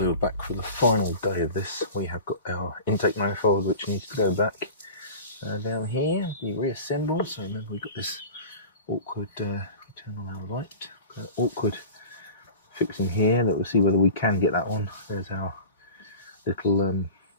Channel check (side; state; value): both; inverted; correlation -0.37